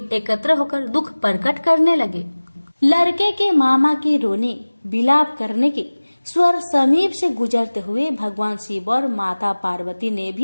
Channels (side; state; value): both; inverted; correlation -1.00